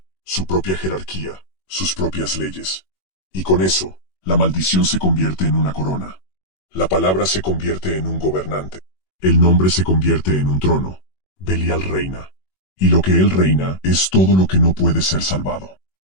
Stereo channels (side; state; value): right; late; 21 ms